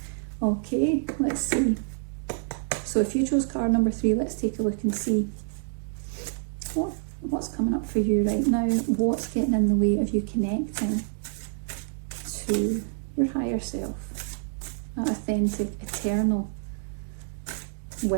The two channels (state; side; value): silent; left; 60 dB below the other